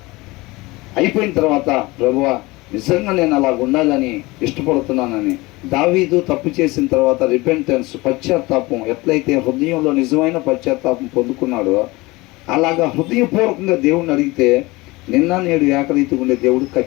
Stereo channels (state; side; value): quieter; right; 22.1 dB